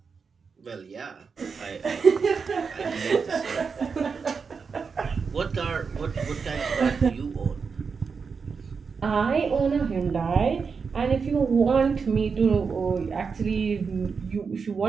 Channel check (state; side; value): quieter; left; 5.4 dB